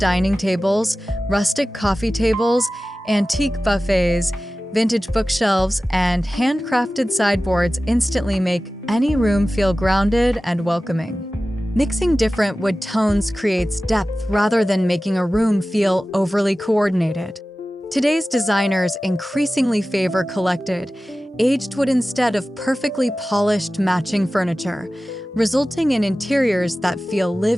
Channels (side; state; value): both; normal; correlation 0.96